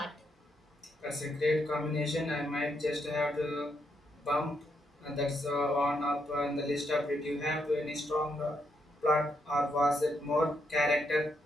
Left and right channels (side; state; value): both; normal; correlation 0.78